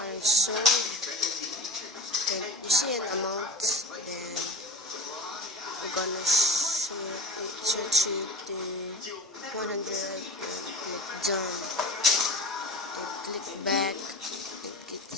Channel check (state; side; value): normal; both; correlation 0.31